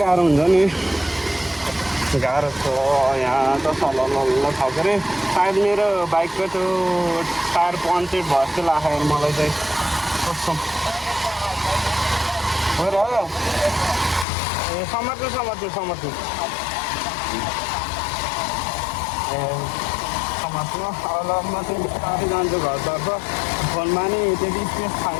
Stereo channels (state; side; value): drops out; right; at 14.2 s